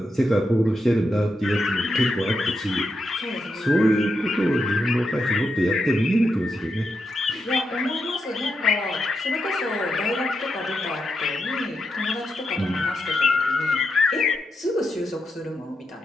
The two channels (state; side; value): normal; both; correlation 0.85